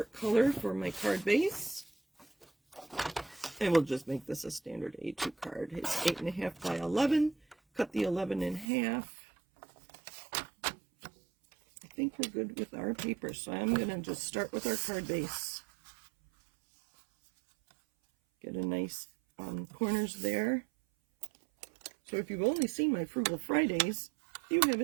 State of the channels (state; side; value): drops out; left; at 8.7 s